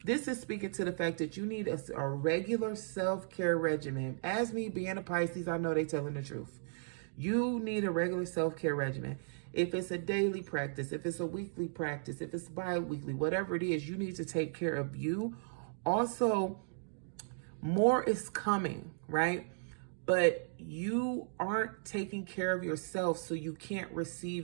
This is speaking to the fact that you need a regular self-care regimen. As me being a Pisces, I know they telling the truth. You need a regular self-care regimen. If it's a daily practice, if it's a weekly practice, if it's bi-weekly, whatever it is, you need to take care of you. Also, more is coming, right? But you aren't taking care of yourself, so you can't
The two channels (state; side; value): silent; left; digital silence